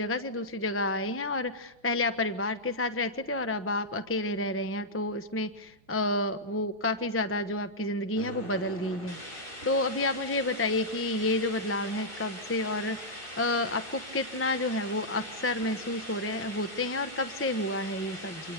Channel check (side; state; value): both; normal; correlation -0.09